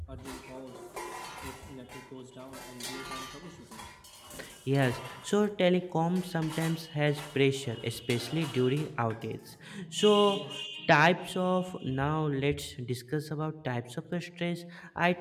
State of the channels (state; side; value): identical; both; correlation 1.00